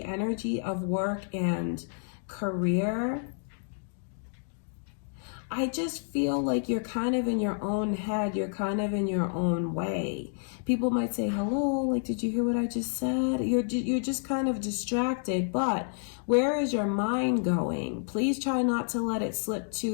energy of work and career, I just feel like you're kind of in your own head. You're kind of in your own way. People might say, hello, like, did you hear what I just said? You're just kind of distracted. But where is your mind going? Please try not to let it slip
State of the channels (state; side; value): silent; right; digital silence